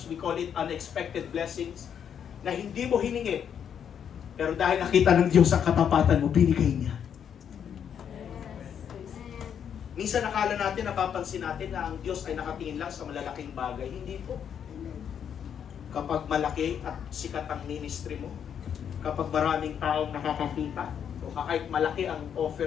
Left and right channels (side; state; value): right; quieter; 8.3 dB